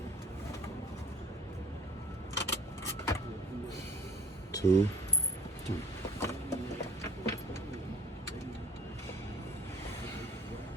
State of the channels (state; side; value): normal; both; correlation 0.53